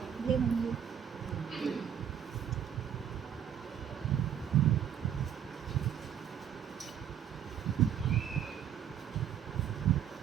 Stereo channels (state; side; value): quieter; left; 9.0 dB